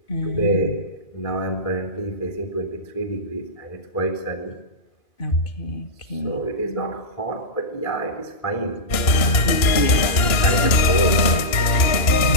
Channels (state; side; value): late; right; 2.9 ms